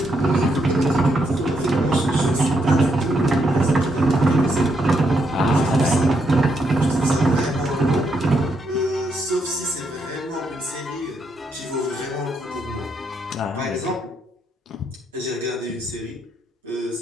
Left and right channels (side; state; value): both; normal; correlation 0.77